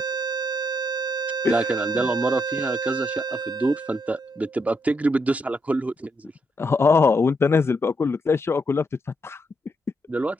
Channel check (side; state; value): both; normal; correlation 0.78